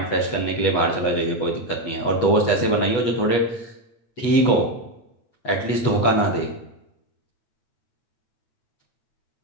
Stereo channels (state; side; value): late; right; 8.2 ms